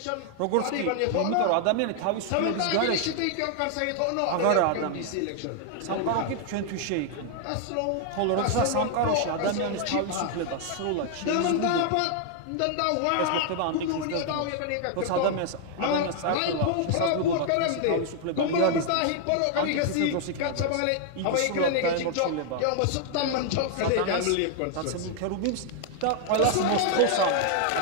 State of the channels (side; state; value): both; different; correlation 0.00